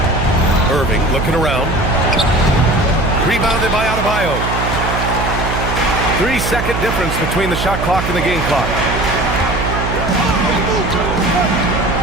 Irving looking around. Rebounded by Adebayo. 3-second difference between the shot clock and the game clock.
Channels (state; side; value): noise; right; hum, 3 dB below the sound